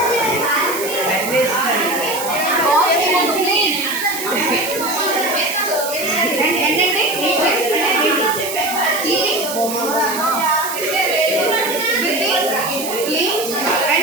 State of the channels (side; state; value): right; noise; hiss, 7 dB below the sound